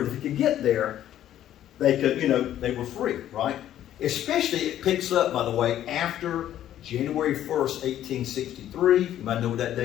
If they could get there, they could, they were free, right? Especially, it picks up, by the way, after January 1st, 1863. You might know what that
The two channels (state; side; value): quieter; right; 11.8 dB